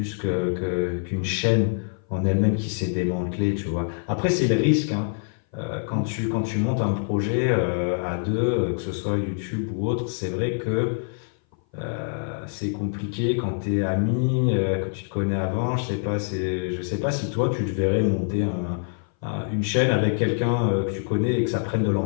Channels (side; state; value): right; silent; 58 dB below the other